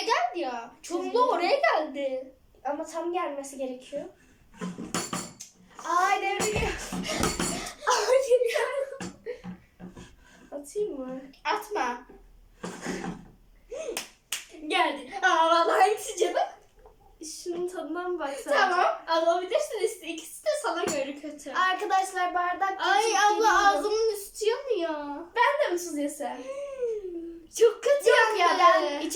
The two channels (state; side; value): identical; both; correlation 1.00